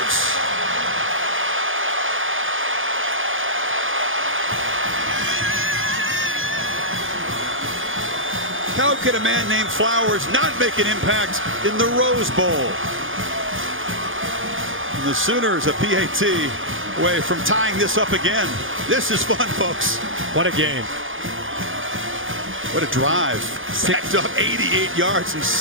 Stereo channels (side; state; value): left; late; 0.58 ms